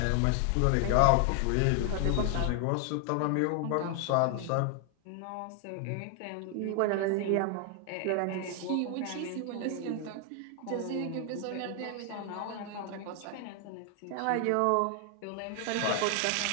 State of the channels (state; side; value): different; both; correlation 0.00